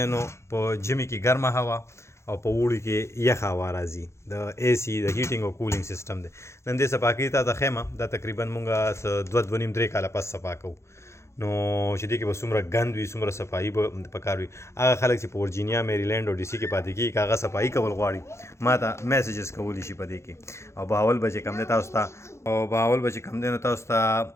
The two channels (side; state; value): right; late; 0.13 ms